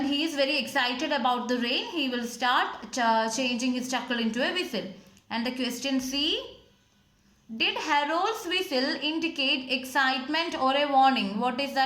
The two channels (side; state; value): both; identical; correlation 1.00